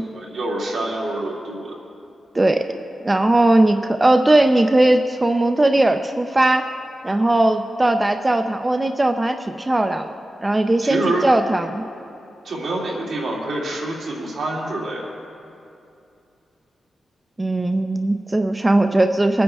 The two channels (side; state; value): both; normal; correlation 0.96